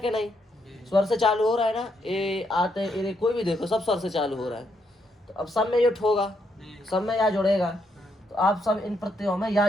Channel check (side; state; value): both; normal; correlation 0.77